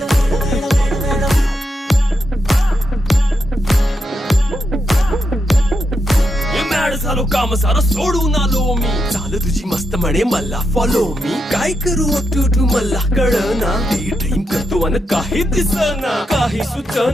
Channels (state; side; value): normal; both; correlation 0.84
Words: झालो काम सारं सोडून आलो मी चाल तुझी मस्त म्हणे मला फॉलो मी काय करू टू मला कळना ती ड्रीम करतो अन काही दिसना काही